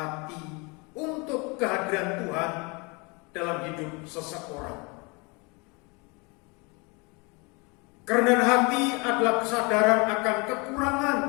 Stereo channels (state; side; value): quieter; right; 29.3 dB